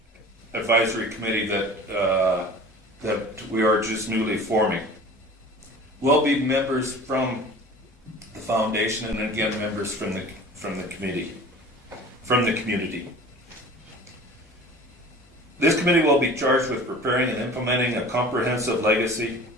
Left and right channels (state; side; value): normal; both; correlation 0.42